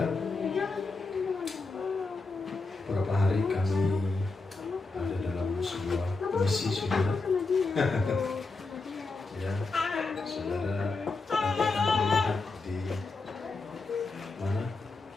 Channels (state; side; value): quieter; right; 3.7 dB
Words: Beberapa hari kami ada dalam sebuah misi, saudara. Ya, saudara nanti akan melihat di mana?